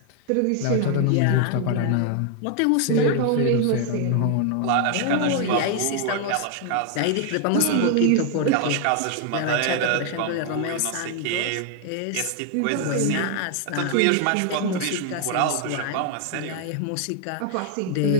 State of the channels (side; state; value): both; different; correlation 0.00